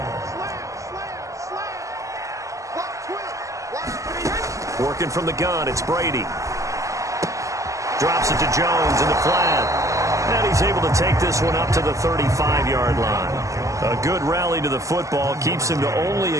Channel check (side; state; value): left; late; 0.16 ms